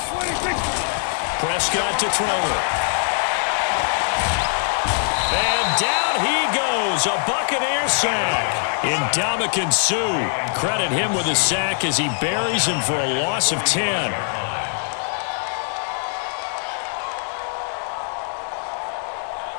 26. Prescott to throw it. And down he goes. A Buccaneer sack. Ndamukong Suh. Credit him with a sack as he buries him for a loss of 10.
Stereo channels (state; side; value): silent; right; digital silence